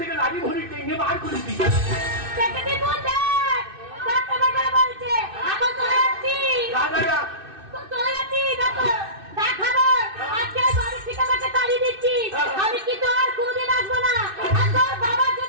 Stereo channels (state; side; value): late; left; 2.6 ms